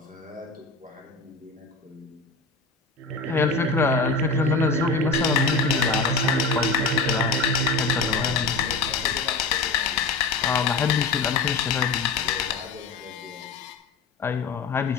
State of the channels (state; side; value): quieter; right; 3.8 dB